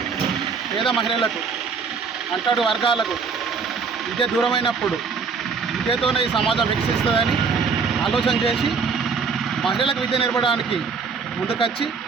పేద మహిళలకు అంటడు వర్గాలకు విద్య దూరమైనప్పుడు విద్యతోనే ఈ సమాజం వికసిస్తుందని ఆలోచన చేసి మహిళలకు విద్య నేర్పడానికి ముందుకొచ్చి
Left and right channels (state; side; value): quieter; left; 5.4 dB